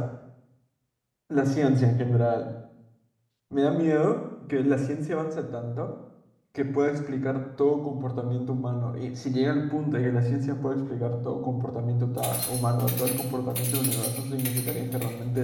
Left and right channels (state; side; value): identical; both; correlation 1.00